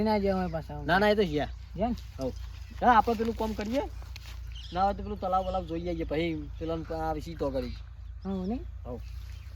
ના જાય હોય પાછા ના ના એ તો છે જેમ હવ હા આપણે પેલું કામ કરીએ ના હોય તો પેલું તલાવ વલાવ જોઈ આવીએ પછી પેલા આ વિશે તો કરી હા નહીં હવ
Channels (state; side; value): identical; both; correlation 1.00